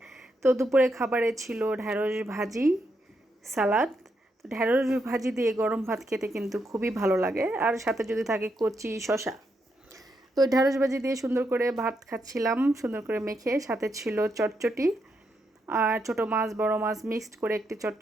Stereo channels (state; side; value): normal; both; correlation 0.81